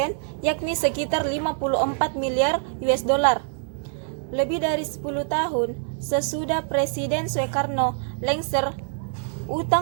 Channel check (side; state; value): left; silent; 56 dB below the other